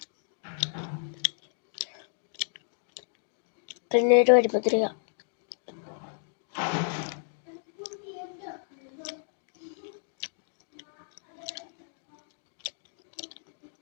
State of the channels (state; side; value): silent; right; digital silence